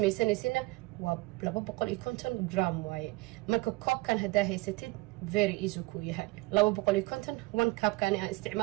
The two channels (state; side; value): quieter; left; 23.2 dB